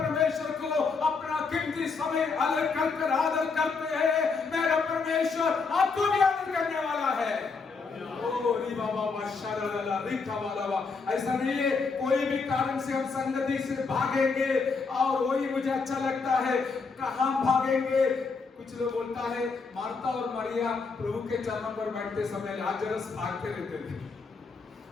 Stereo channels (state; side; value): quieter; right; 4.7 dB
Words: को अपना कीमती समय अलग कर आदर करते हैं, मेरा परमेश्वर आपको भी आदर करने वाला है। ऐसा नहीं है कोई भी कारण से हम संगति से भागेंगे और वही मुझे अच्छा लगता है, कहां भागेंगे। कुछ लोग बोलता है मार्था और मरिया प्रभु के चरणों पर बैठते समय लाजरस भागते रहते थे।